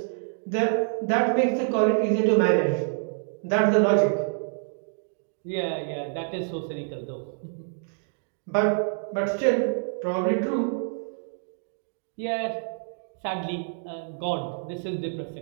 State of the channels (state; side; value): silent; left; digital silence